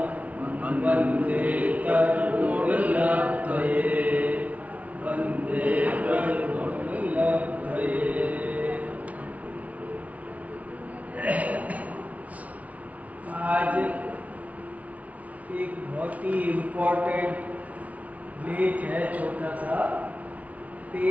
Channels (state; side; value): late; left; 0.069 ms